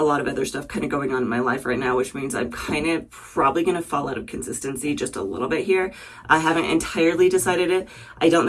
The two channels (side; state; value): both; identical; correlation 1.00